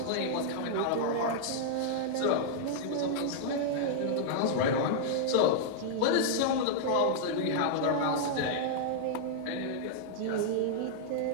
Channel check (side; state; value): both; different; correlation -0.01